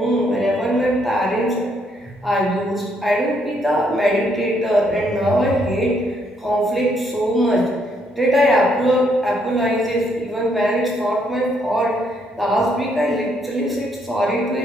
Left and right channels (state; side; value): normal; both; correlation 0.72